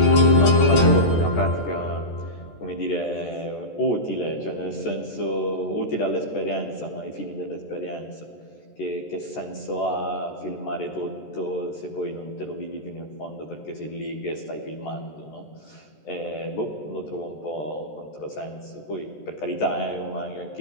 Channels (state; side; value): late; right; 14 ms